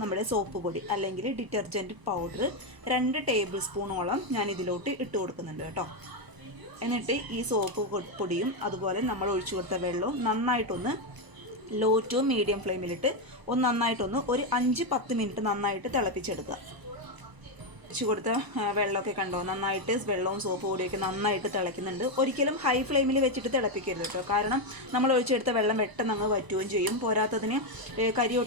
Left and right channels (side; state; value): left; late; 1.0 ms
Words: നമ്മുടെ സോപ്പ് പൊടി അല്ലെങ്കിൽ ഡിറ്റർജൻറ്റ് പൗഡർ 2 ടേബിൾ സ്പൂണോളം ഞാൻ ഇതിലോട്ട് ഇട്ട് കൊടുക്കുന്നുണ്ട് കേട്ടോ. എന്നിട്ട് ഈ സോപ്പ് പൊടിയും അതുപോലെ നമ്മൾ ഒഴിച്ചു കൊടുത്ത വെള്ളവും നന്നായിട്ടൊന്ന് ലോ ടു മീഡിയം ഫ്ലെയിമിലിട്ട് നന്നായിട്ടൊന്ന് ഒരു 5-10 മിനിറ്റ് നന്നായിട്ട് തിളപ്പിച്ചെടുക്കുക. ഒഴിച്ചു കൊടുത്ത വെള്ളമൊക്കെ കണ്ടോ, നന്നായിട്ട് വെള്ളവും സോപ്പ് പൊടിയൊക്കെ നന്നായിട്ട് തിളയ്ക്കുന്നുണ്ട്. ഒരിക്കലും ഹൈ ഫ്ലെയിമിൽ വെച്ചിട്ട് തിളപ്പിക്കരുത് കേട്ടോ, കാരണം നമ്മൾ ഒഴിച്ചെടുത്ത വെള്ളം പെട്ടെന്ന് അങ്ങ് വറ്റുകയും ചെയ്യും. പോരാത്തതിന് കരി